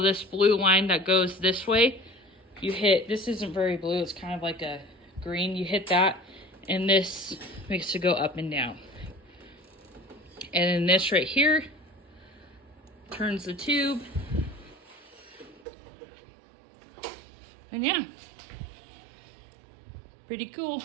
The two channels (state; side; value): drops out; left; at 15.6 s